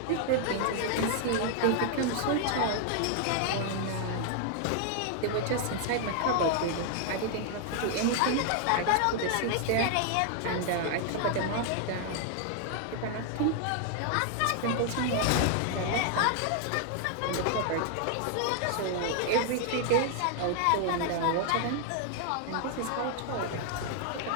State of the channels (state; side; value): different; both; correlation 0.00